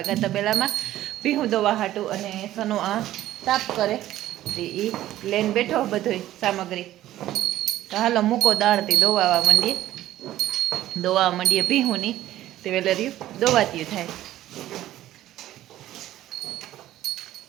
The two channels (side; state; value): left; quieter; 13.9 dB